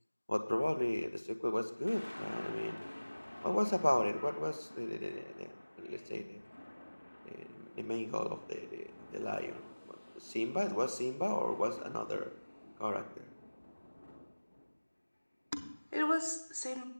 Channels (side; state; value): both; inverted; correlation -1.00